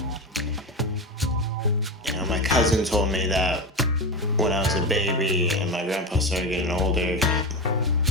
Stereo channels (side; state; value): both; normal; correlation 0.20